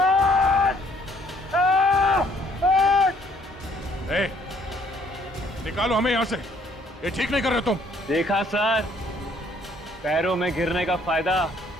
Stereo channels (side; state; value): both; normal; correlation 0.63